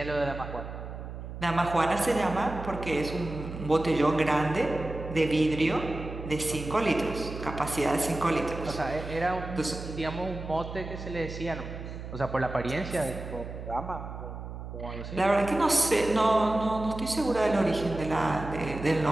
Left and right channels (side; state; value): right; noise; hum, 9 dB below the sound